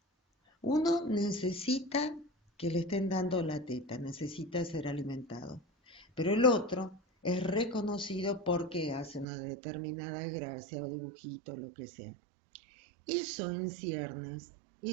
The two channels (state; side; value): drops out; left; at 9.2 s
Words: Uno necesita que le estén dando la teta, necesita ser alimentado, pero el otro es reconocido porque hace una determinada gracia o dibujito, lo que sea. Eso en ciernes,